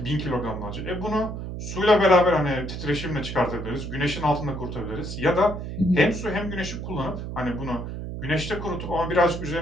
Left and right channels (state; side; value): noise; right; hum, 7 dB below the sound